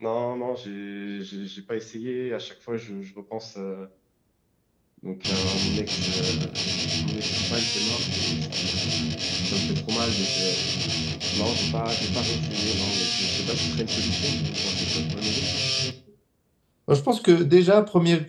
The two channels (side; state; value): both; identical; correlation 1.00